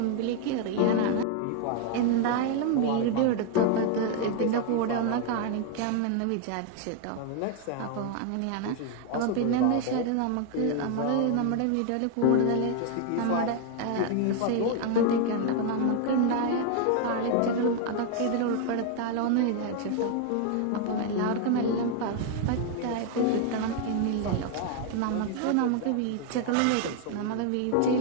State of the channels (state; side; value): different; both; correlation 0.00